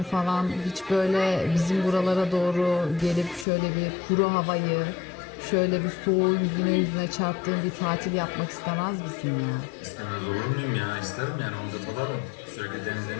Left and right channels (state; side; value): drops out; right; at 3.5 s